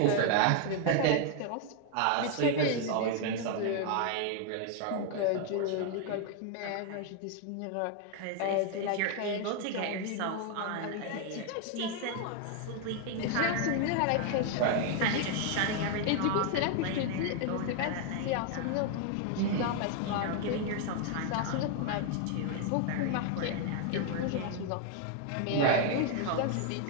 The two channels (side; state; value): both; different; correlation 0.00